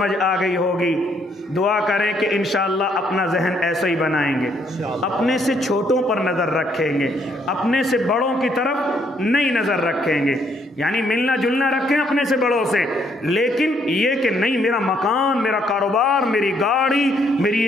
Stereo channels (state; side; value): normal; both; correlation 0.70